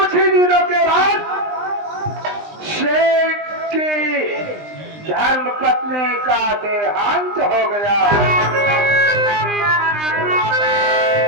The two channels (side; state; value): left; late; 20 ms